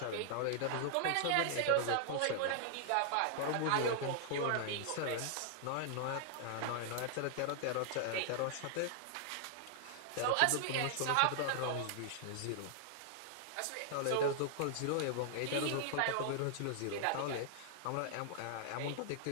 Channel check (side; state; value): both; different; correlation 0.00